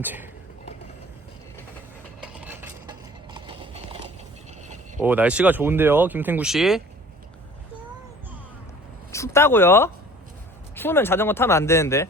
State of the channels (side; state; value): both; normal; correlation 0.48